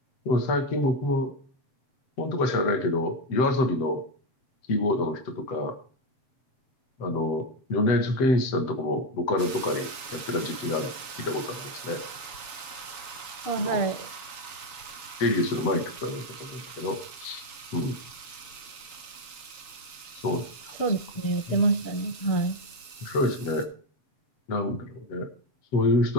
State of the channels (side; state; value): right; late; 7.1 ms